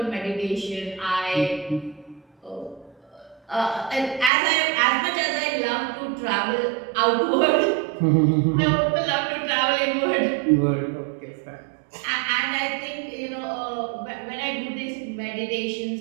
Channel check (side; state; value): left; drops out; at 4.3 s